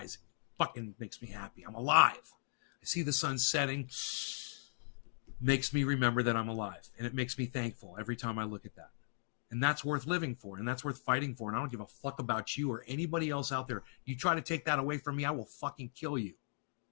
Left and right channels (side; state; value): right; silent; digital silence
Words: Fucking makes me happy. I'm alive. I see the sun setting. Makes me remember that I'm alive. And it makes me thankful every time I look at that. And that's worth living for. And that's worth fighting for. And I don't give a fuck about you or anybody else out there. You try to take that away from me, I will fucking kill you.